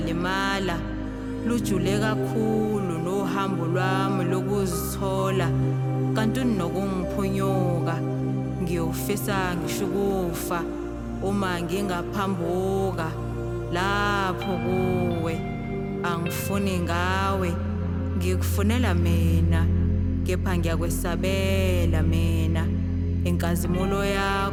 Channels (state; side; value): identical; both; correlation 1.00